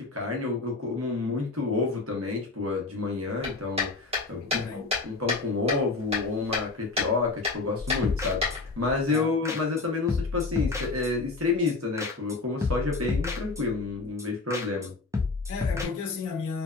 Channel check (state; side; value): quieter; right; 3.7 dB